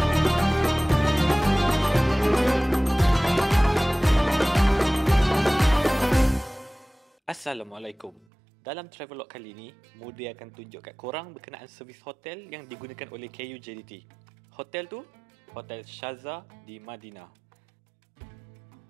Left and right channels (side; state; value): left; drops out; at 8.2 s